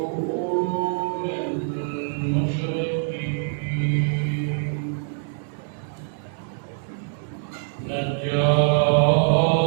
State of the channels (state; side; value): silent; left; digital silence